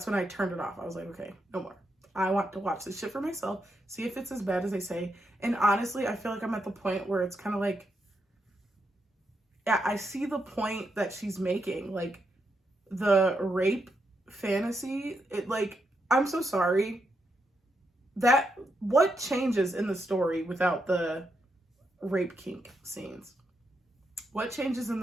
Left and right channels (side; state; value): both; normal; correlation 0.82